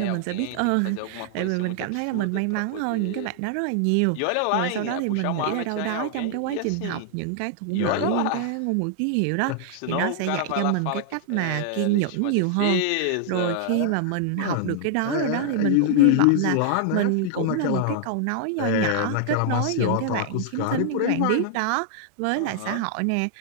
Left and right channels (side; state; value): both; different; correlation -0.01